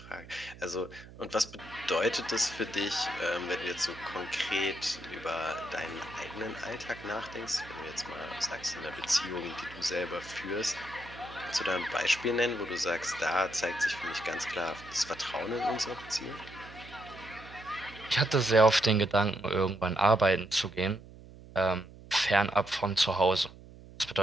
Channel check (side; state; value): right; noise; hum, 18 dB below the sound